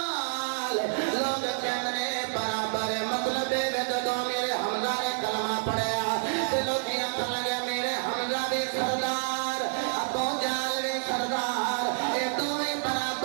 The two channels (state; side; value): silent; left; 59 dB below the other